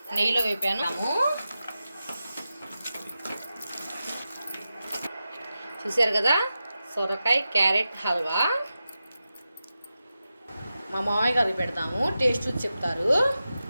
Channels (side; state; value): both; inverted; correlation -0.92